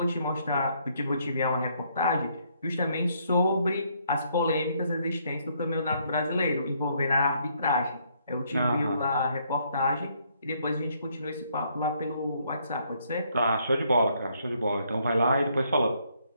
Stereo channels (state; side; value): inverted; both; correlation -0.70